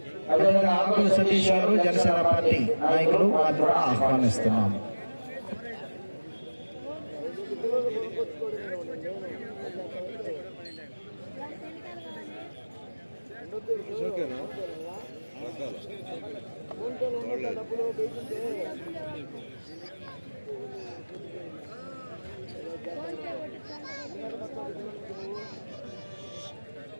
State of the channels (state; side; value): inverted; both; correlation -1.00